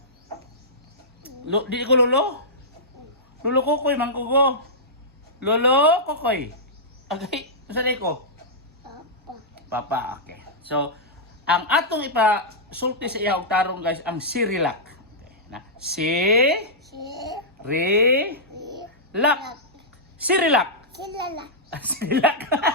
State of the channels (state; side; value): normal; both; correlation -0.13